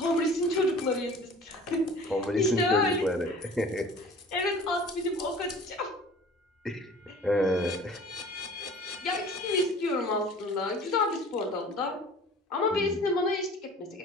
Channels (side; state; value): both; normal; correlation 0.45